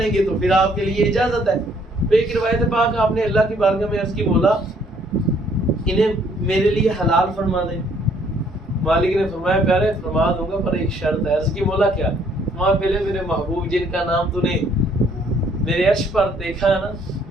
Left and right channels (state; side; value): normal; both; correlation 0.64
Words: گے تو پھر آپ کے لیے اجازت ہے۔ ایک روایت پاک آپ نے اللہ کی بارگاہ میں عرض کی مولا انہیں میرے لیے حلال فرما دیں۔ مالک نے فرمایا پیارے فرما دوں گا پر ایک شرط ہے۔ عرض کی مولا کیا؟ فرمایا پہلے میرے محبوب جن کا نام تو نے میرے عرش پر دیکھا ہے نا